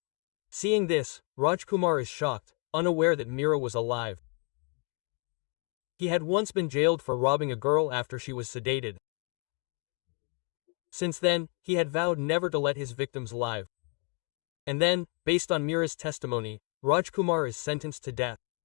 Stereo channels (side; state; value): right; quieter; 33.0 dB